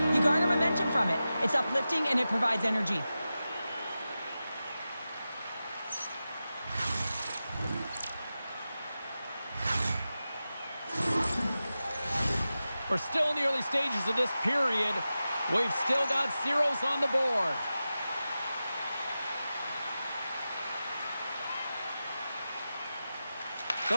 You garner momentum from it. It's uplifting and it provides energy. We're still in the early stages of this period. We've still got zeros on the board.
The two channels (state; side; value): inverted; both; correlation -0.93